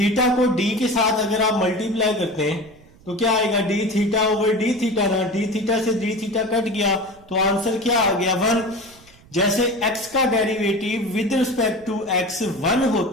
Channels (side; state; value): right; noise; rumble, 26 dB below the sound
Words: को डी के साथ अगर आप मल्टीप्लाई करते हैं तो क्या आएगा, D theta over D theta ना, डी थीटा से डी थीटा कट गया, तो आंसर क्या आ गया, 1। जैसे x का derivative with respect to x 1